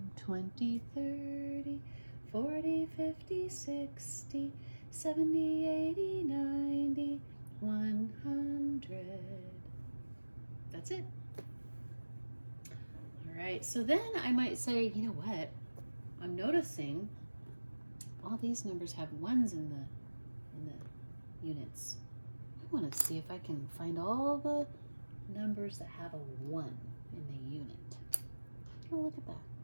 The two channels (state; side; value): inverted; both; correlation -1.00